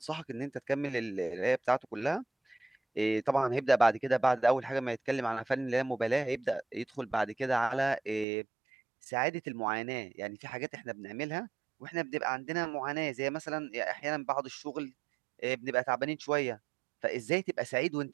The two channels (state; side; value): drops out; left; at 8.2 s